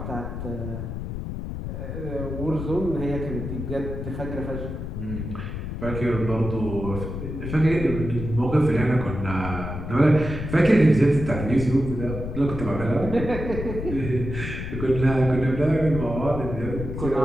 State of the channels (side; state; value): left; noise; rumble, 6 dB below the sound